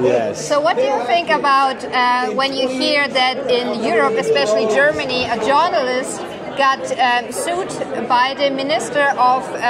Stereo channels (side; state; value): both; identical; correlation 1.00